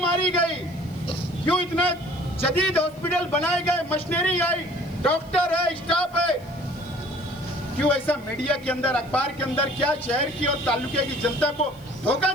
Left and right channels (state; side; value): noise; left; hiss, 27 dB below the sound